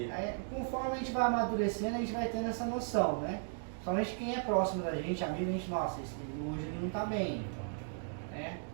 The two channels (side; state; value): left; silent; digital silence